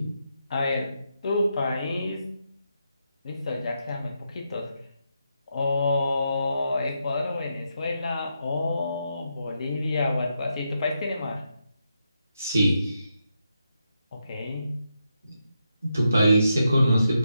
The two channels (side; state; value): both; inverted; correlation -0.83